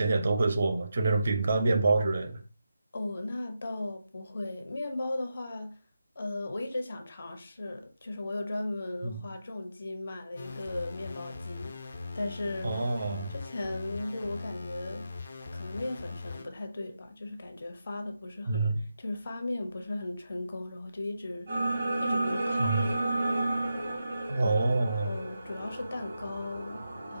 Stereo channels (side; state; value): both; inverted; correlation -0.88